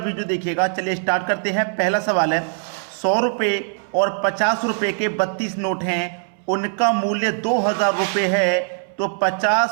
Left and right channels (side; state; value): left; silent; 64 dB below the other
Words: देखिएगा। चलिए स्टार्ट करते हैं। पहला सवाल है, 100 रुपये और 50 रुपये के 32 नोट हैं, उनका मूल्य 2000 रुपये है, तो